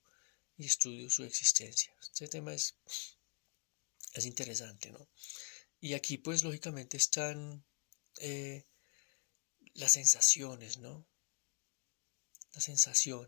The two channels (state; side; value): quieter; right; 40.0 dB